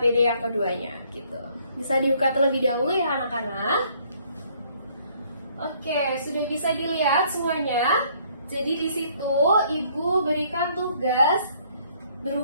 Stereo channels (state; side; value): inverted; both; correlation -0.63